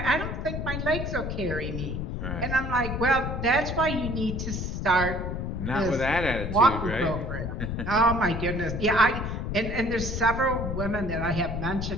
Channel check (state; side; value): noise; left; rumble, 3 dB below the sound